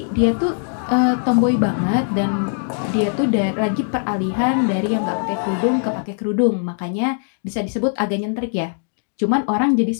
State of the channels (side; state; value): right; silent; digital silence